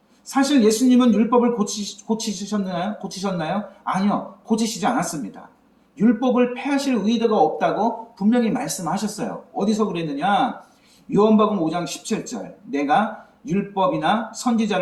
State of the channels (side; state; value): both; identical; correlation 1.00